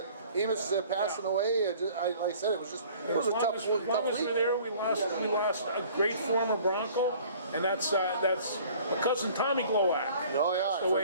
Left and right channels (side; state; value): both; inverted; correlation -0.51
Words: passing away. Like I said, it was a tough week. As long as we're there, we lost a great former Bronco, and that's my cousin Tommy Glowak. Oh